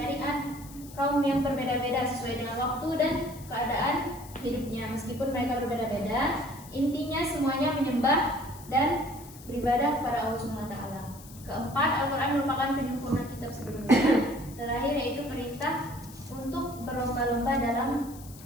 kaum yang berbeda-beda sesuai dengan waktu dan keadaan hidupnya. Meskipun mereka berbeda-beda, intinya semuanya menyembah dan beribadah kepada Allah Subhanahu wa taala. Keempat, Al-Quran merupakan penyempurna kitab sebelumnya. Terakhir yaitu perintah untuk berlomba-lomba dalam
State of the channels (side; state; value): left; noise; hiss, 19 dB below the sound